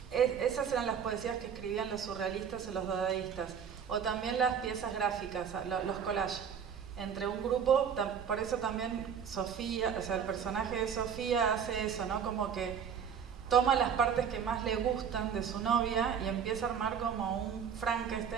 Esas eran las poesías que escribían los surrealistas o los dadaístas, o también las piezas gráficas, los collages. Entre un grupo, por eso también Sofía, o sea, el personaje de Sofía hace eso, ¿no? Como que toma las partes que más le gustan de su novia y empieza a armar como un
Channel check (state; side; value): quieter; left; 7.5 dB